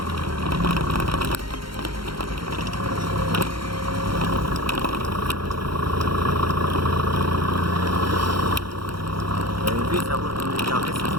conduit, ça roule comme des carrés, ça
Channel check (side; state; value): left; late; 0.73 ms